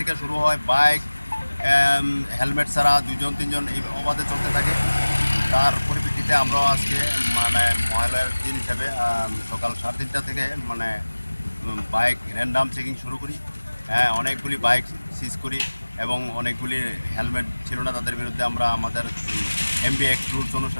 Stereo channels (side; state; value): both; inverted; correlation -1.00